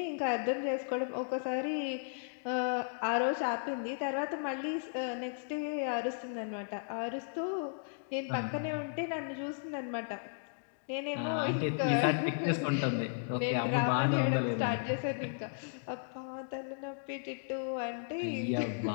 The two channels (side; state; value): right; silent; digital silence